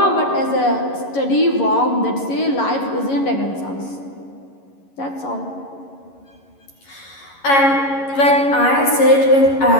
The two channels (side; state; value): right; late; 11 ms